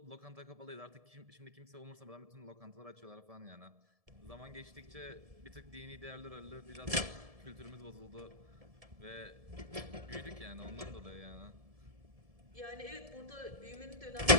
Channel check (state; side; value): late; left; 1.7 ms